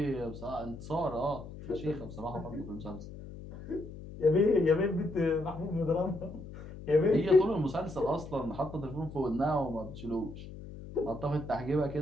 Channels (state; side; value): noise; left; hum, 13 dB below the sound